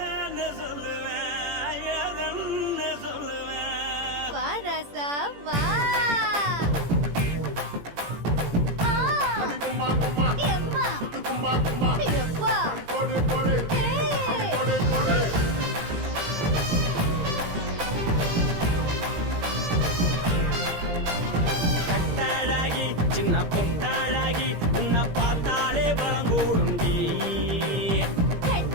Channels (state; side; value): late; left; 17 ms